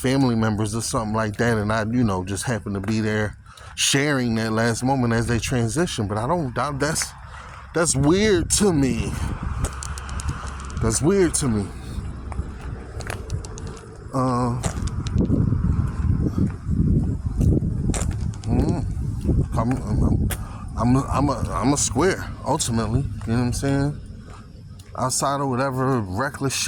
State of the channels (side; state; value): both; identical; correlation 1.00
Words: members or something like that, and I, you know, just happen to be there sharing that last moment as they transition. But I don't, that's weird to me. That's weird to me. I'm a square, ultimately. You know what I'm saying? Outside of whatever reckless